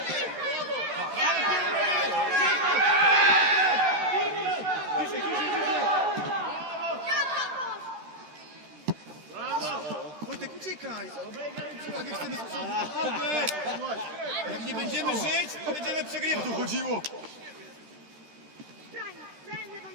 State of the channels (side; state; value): left; late; 13 ms